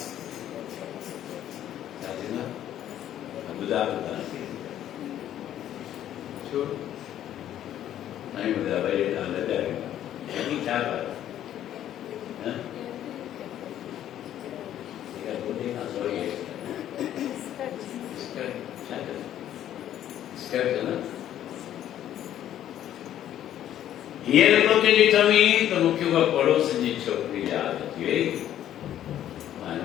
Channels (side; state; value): right; quieter; 11.5 dB